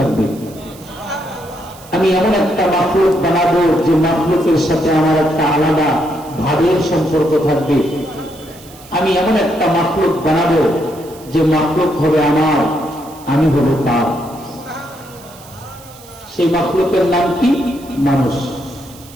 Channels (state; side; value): noise; right; hiss, 21 dB below the sound